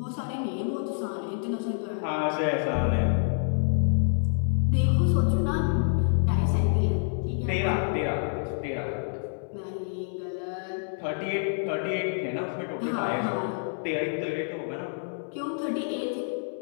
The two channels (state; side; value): silent; right; 60 dB below the other